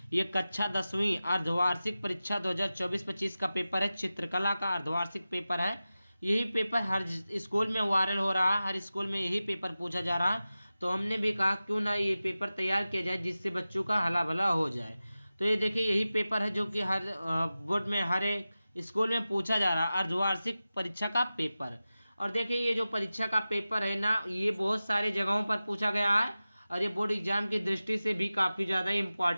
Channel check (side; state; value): both; inverted; correlation -0.95